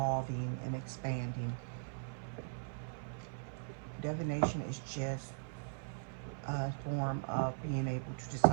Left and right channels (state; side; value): silent; left; 51 dB below the other